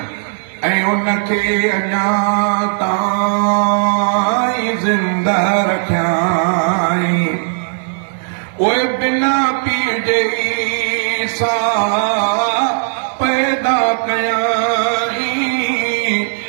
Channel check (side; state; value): left; silent; digital silence